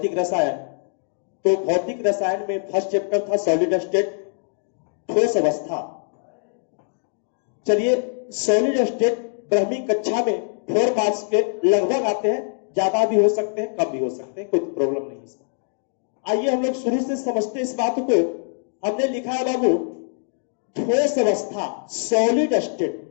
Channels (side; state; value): right; silent; digital silence